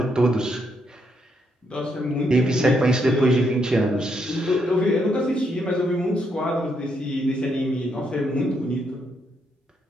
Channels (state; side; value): normal; both; correlation 0.77